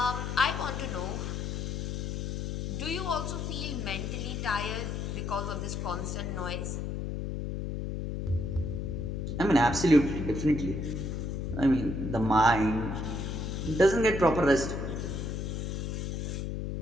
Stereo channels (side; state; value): left; noise; hum, 3 dB below the sound